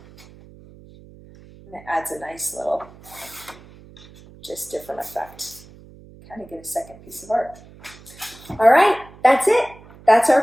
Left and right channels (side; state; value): right; noise; hum, 22 dB below the sound